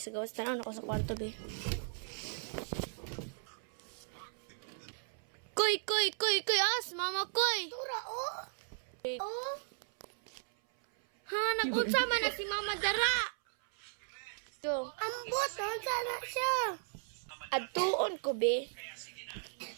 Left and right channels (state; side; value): silent; left; 54 dB below the other